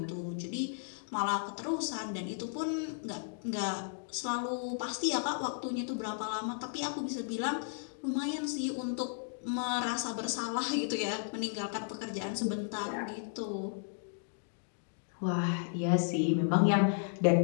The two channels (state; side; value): silent; right; digital silence